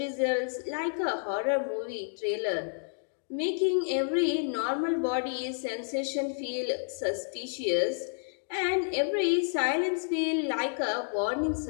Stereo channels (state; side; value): silent; right; digital silence